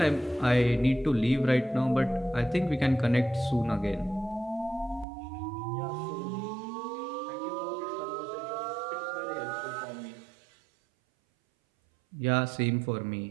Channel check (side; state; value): left; drops out; at 5.1 s